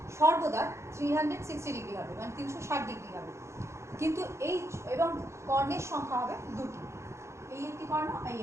সর্বদা 360 ডিগ্রি হবে, মানে 360 ডিগ্রি হবে। কিন্তু এই এবং কর্ণের সংখ্যা হবে দুটি, এই একটি কর্ণ, এই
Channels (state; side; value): late; left; 0.14 ms